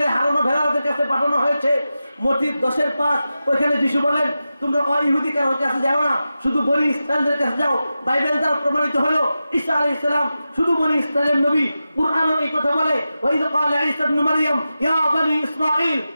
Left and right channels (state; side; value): inverted; both; correlation -0.92